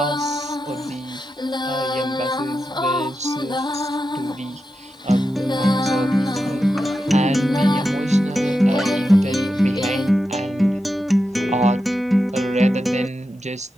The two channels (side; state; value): both; normal; correlation 0.89